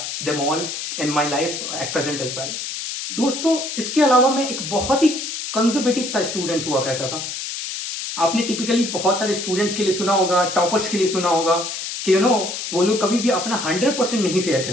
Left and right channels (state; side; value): noise; left; hiss, 6 dB below the sound